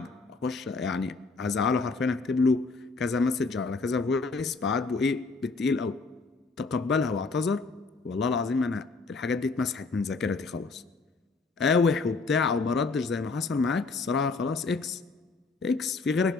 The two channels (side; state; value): right; quieter; 4.0 dB